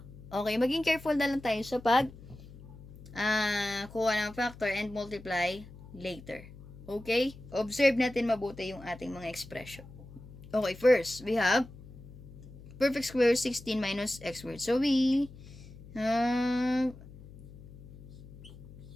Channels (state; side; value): noise; left; hum, 17 dB below the sound